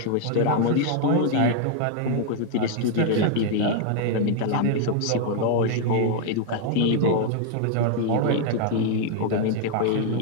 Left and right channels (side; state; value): both; different; correlation 0.00